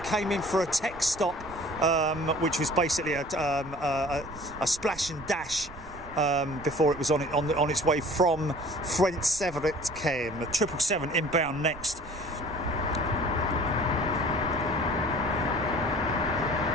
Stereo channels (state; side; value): noise; right; rumble, 17 dB below the sound